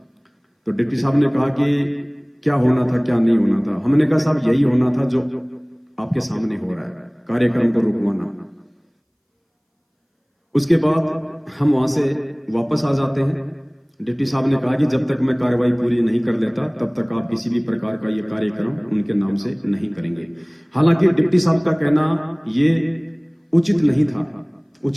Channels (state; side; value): identical; both; correlation 1.00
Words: तो डिप्टी साहब ने कहा कि क्या होना था क्या नहीं होना था। हमने कहा साहब, यही होना था जो आपके सामने हो रहा है, कार्यक्रम को रुकवाना। उसके बाद हम वहां से वापस आ जाते हैं। डिप्टी साहब ने कहा कि जब तक मैं कार्रवाई पूरी नहीं कर लेता तब तक आप किसी भी प्रकार का ये कार्यक्रम उनके नाम से नहीं करेंगे। हालांकि डिप्टी साहब का कहना ये उचित नहीं था।